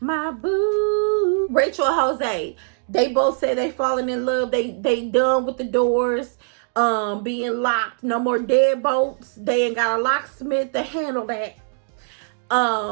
My boo. Rachel and Jose, they both say they falling in love. They done with the doors being locked. No more deadbolts. They ain't got a locksmith to handle that.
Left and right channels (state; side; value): silent; left; digital silence